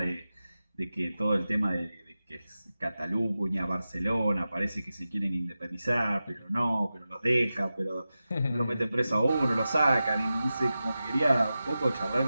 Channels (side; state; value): both; inverted; correlation -0.93